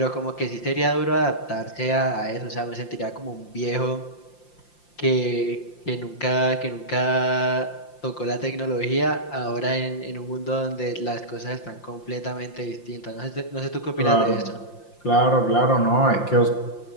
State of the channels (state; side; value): late; right; 5.8 ms